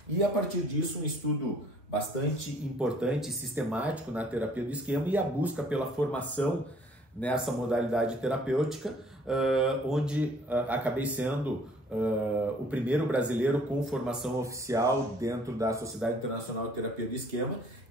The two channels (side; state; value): both; normal; correlation 0.57